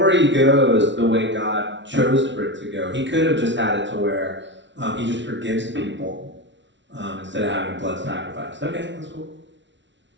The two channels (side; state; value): left; late; 0.53 ms